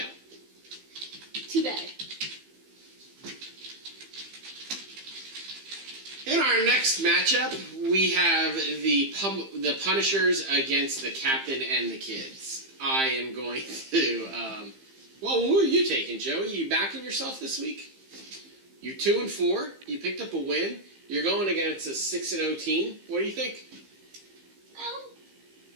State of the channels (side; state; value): left; late; 15 ms